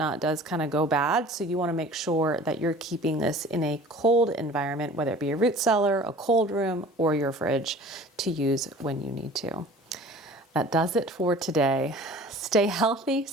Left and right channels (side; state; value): both; normal; correlation 0.45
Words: does kind of go bad, so you wanna make sure that you're keeping this in a cold environment, whether it be a root cellar, a cold room, or your fridge to use when you need to. That does it for today. Stay healthy,